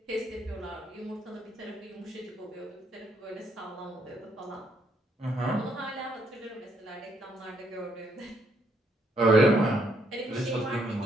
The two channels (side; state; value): both; normal; correlation 0.72